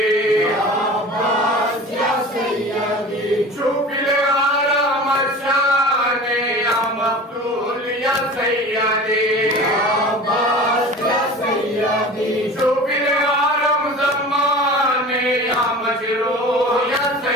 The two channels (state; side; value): normal; both; correlation 0.37